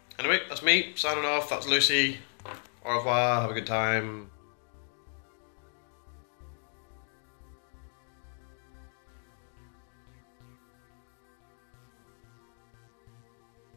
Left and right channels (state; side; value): silent; right; 55 dB below the other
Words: Anyway, that's me signing off. That's Lucy. Au revoir, have a good time.